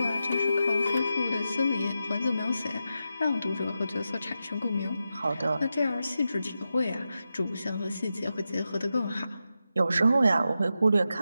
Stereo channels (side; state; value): both; inverted; correlation -0.89